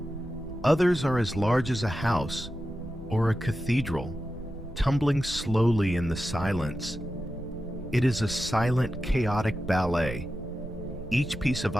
Others are as large as a house or a cathedral, tumbling slowly in the silence. It is a silent, chaotic ballet. Each piece of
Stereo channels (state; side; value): normal; both; correlation 0.91